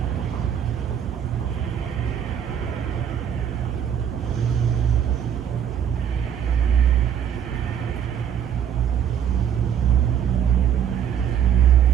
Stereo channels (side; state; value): left; quieter; 8.8 dB